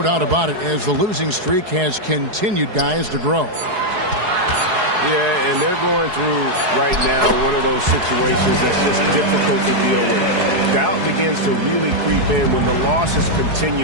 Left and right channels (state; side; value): late; left; 4.7 ms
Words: about it, as the losing streak has continued, guys, to grow. Yeah, and they're going through right now one of those situations that's just difficult to deal with. Doubt begins to really creep in when the losses